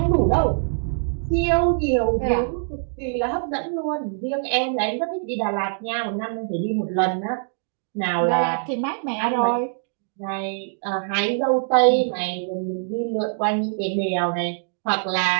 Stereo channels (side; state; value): left; silent; digital silence